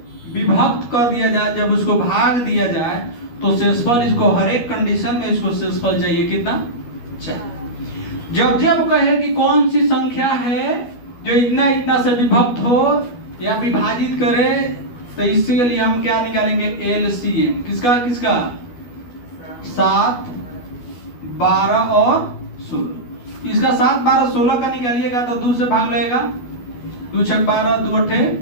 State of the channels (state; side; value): late; right; 12 ms